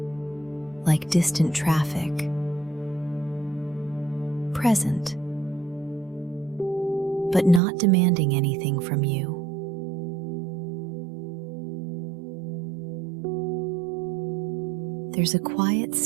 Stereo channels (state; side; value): drops out; left; at 7.6 s